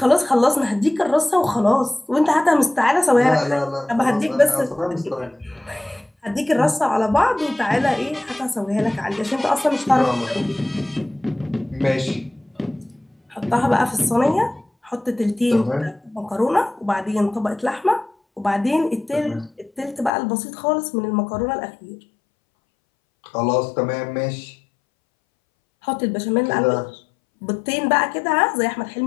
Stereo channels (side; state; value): right; drops out; at 20.1 s